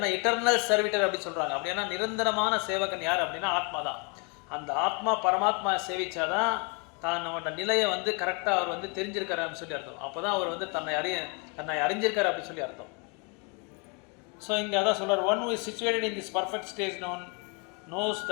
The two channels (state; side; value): quieter; right; 33.6 dB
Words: இட்டர்னல் சர்வீட்டர் அப்படின்னு சொல்கிறாங்க. அப்படின்னா நிரந்தரமான சேவகன் யார் அப்படின்னா ஆத்மா தான். அந்த ஆத்மா பரமாத்மா சேவிச்சாதான் தன்னோட நிலையை கரெக்டாக அவர் தெரிஞ்சிருக்காரு அப்படின்னு சொல்லி அர்த்தம். அப்போ தான் அவர் தன்னை அறிஞ்சிருக்காரு அப்படின்னு சொல்லி அர்த்தம். ஸோ இங்கே அதான் சொல்கிறார், one who is situated in this perfect stage knows